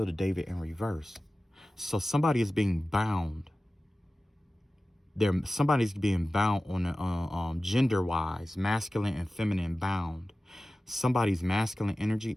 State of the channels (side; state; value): both; normal; correlation 0.96